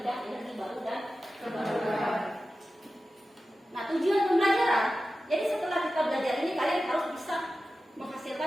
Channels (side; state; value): both; normal; correlation 0.94